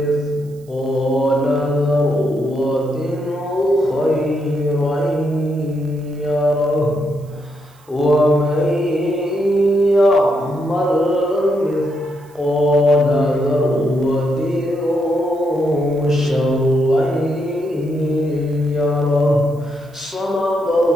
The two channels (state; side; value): noise; right; hiss, 30 dB below the sound